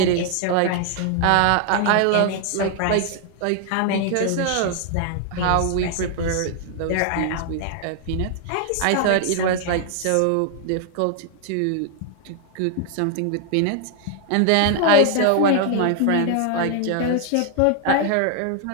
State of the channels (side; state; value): both; different; correlation 0.00